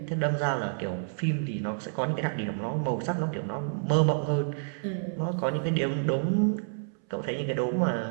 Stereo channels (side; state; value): left; silent; 59 dB below the other